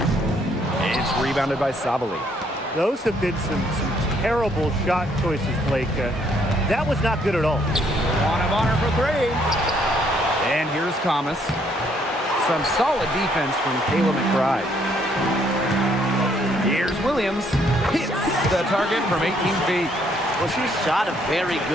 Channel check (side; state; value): both; normal; correlation 0.68